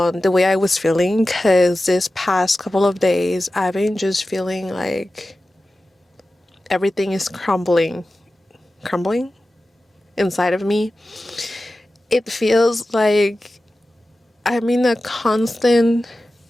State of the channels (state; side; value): normal; both; correlation 0.95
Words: the way I was feeling, because this past couple of days I've been just feeling like everything is crumbling inside of me. It feels like I'm in a constant,